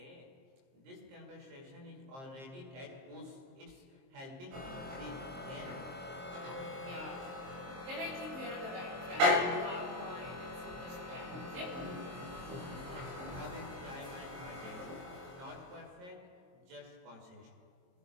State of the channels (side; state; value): left; late; 23 ms